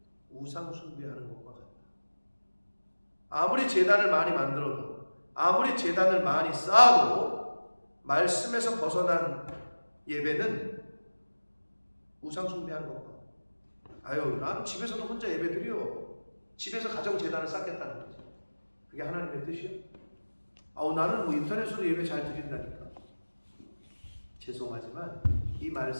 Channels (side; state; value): both; inverted; correlation -1.00